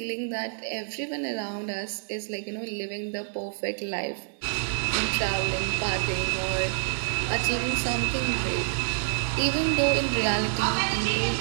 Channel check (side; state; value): left; silent; digital silence